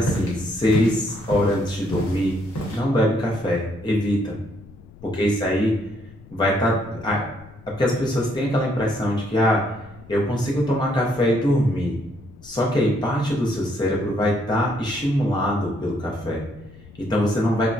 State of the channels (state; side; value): noise; left; rumble, 21 dB below the sound